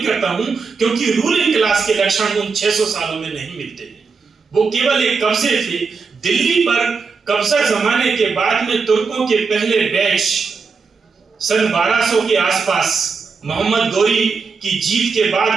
करता हूं क्योंकि रूलिंग क्लास के लक्षण उन 600 सालों में नहीं मिलते हैं। वो केवल एक कब्जे थे। दिल्ली पर कब्जा जमाने के बाद में तुर्कों के पहले बैच सन 1200 के आसपास मोहम्मद गौरी की जीत के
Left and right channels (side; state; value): left; quieter; 5.0 dB